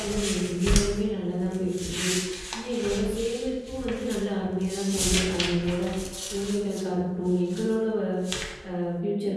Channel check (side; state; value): both; identical; correlation 1.00